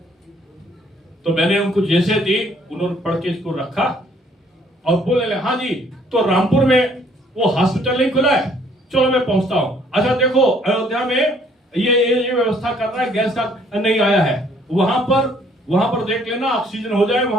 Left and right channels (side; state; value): both; normal; correlation 0.62